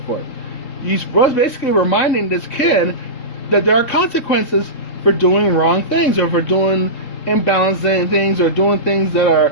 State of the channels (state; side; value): late; right; 3.8 ms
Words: You was basically reminding this kid that there are consequences for doing wrong things, or for doing imbalancing things, or doing things that